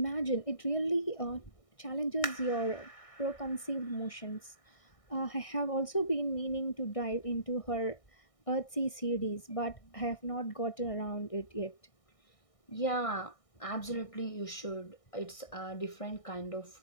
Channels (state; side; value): late; right; 1.6 ms